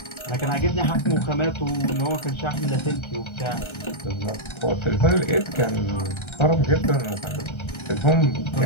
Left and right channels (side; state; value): right; late; 1.3 ms